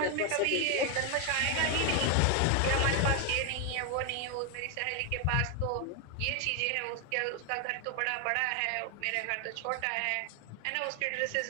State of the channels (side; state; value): both; different; correlation 0.01